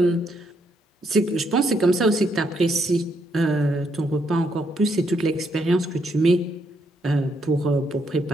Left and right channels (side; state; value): both; normal; correlation 0.75